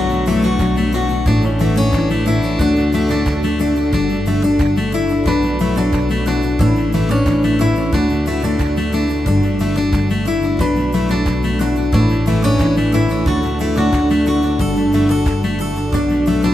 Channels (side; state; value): both; normal; correlation 0.89